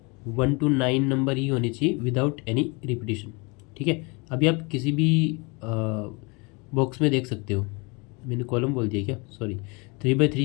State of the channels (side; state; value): right; quieter; 29.3 dB